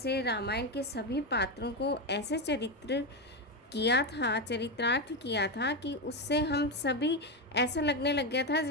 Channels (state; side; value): normal; both; correlation 0.11